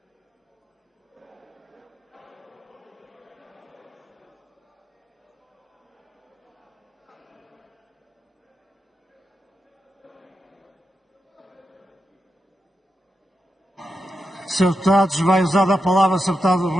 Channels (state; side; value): normal; both; correlation 0.88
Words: Sr. Deputados, vai usar a palavra o Sr. Deputado